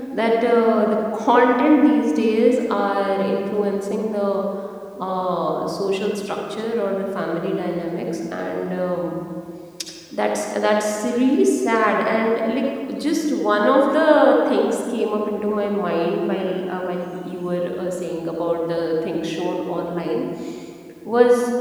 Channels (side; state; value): both; identical; correlation 1.00